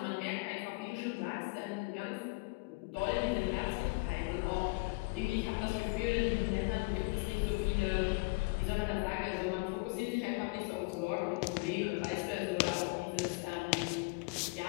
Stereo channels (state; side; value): quieter; right; 28.1 dB